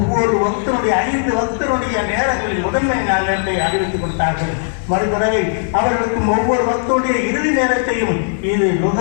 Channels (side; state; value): right; silent; 63 dB below the other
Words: பக்தனுடைய 5 பக்தனுடைய நேரங்களில் முதன்மை நேரத்தை அறிவித்துக் கொடுத்தார்கள். மறுபறவை அவர்களுக்கு ஒவ்வொரு பக்தனுடைய இறுதி நேரத்தையும் இது